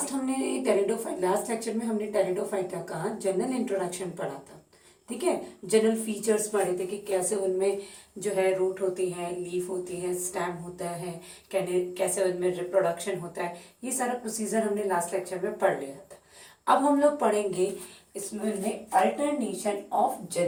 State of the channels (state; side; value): identical; both; correlation 1.00